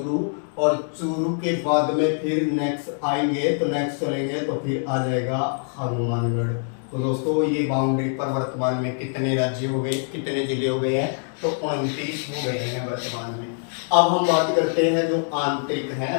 और चूरू के बाद में फिर नेक्स्ट आएंगे तो नेक्स्ट चलेंगे तो फिर आ जाएगा हनुमानगढ़। तो दोस्तों ये बाउंड्री पर वर्तमान में कितने राज्य हो गए, कितने जिले हो गए हैं, तो 29 हो गए हैं वर्तमान में। अब हम बात करते हैं जो आंतरिक हैं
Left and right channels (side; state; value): right; silent; 62 dB below the other